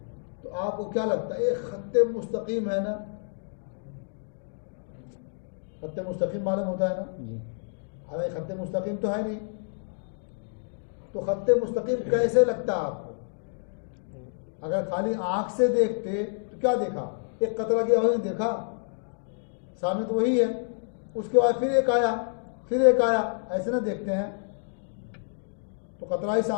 तो आपको क्या लगता है? एक खत्ते मुस्तकीम है ना? खत्ते मुस्तकीम मालूम होता है ना? हालांकि खत्ते मुस्तकीम तो है नहीं। तो खत्ते मुस्तकीम कैसे लगता है आपको? अगर खाली आंख से देखते तो क्या देखा? एक कतरा गया वही देखा, सामने तो वही है। उसके बाद फिर एक आया, फिर एक आया, ऐसे ना देखते हैं। तो कतरा ही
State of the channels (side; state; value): right; silent; digital silence